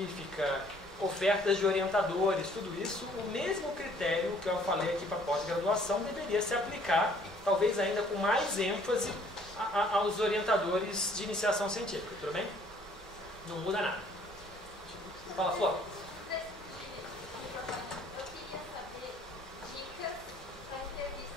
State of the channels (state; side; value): normal; both; correlation 0.59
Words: ofertas de orientadores, tudo isso, o mesmo critério que eu falei aqui para pós-graduação deveria se aplicar, talvez ainda com mais ênfase, aos orientadores de iniciação científica, tudo bem? Não muda nada. Fala, Flor.